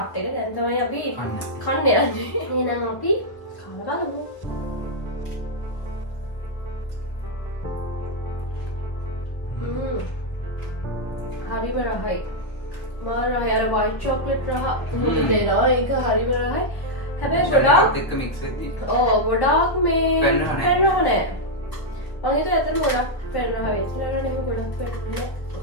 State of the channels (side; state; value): right; late; 1.3 ms